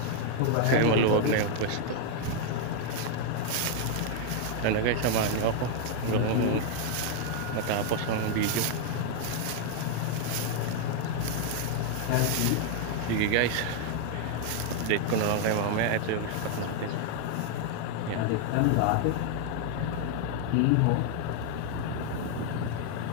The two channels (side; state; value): both; different; correlation 0.00